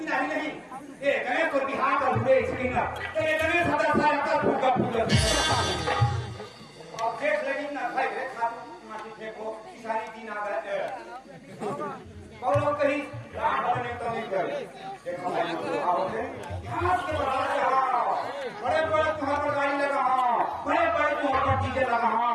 नहीं ये गणेश को बिहार का हुए स्क्रीन ये गणेश 1000 साल का फूका फूल अब देख लगी ना भाई माटी फेंको सारी दिन आ गए और कहीं रात भरने तो नहीं कर देखो भाई आओगे घास के बराबर बड़े बड़े तुम्हारे पर गाड़ी लगा बड़े बड़े तुम्हारे पर डीजे लगा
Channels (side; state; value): both; identical; correlation 1.00